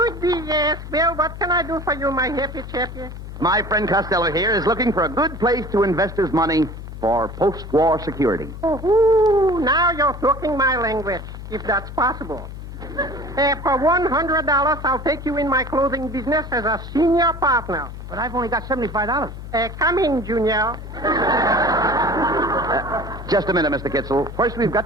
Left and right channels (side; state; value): left; noise; hum, 11 dB below the sound